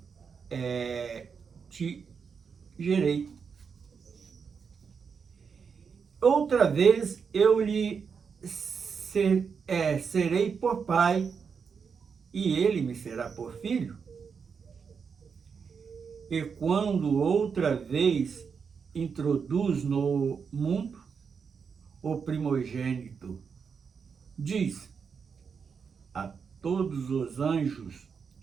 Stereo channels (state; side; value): quieter; left; 6.1 dB